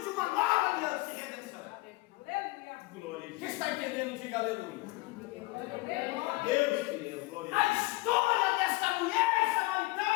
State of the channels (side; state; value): right; quieter; 22.4 dB